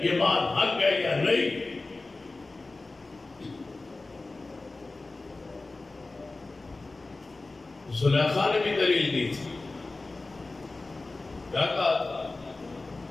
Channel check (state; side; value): quieter; right; 3.3 dB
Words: یہ بات حق ہے یا نہیں؟ زلیخا نے بھی دلیل دی تھی، کیا کہا تھا؟